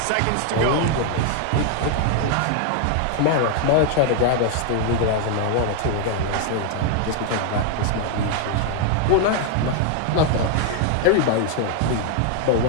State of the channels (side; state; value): both; different; correlation 0.00